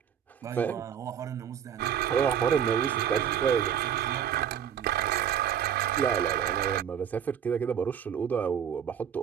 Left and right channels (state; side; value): quieter; left; 8.8 dB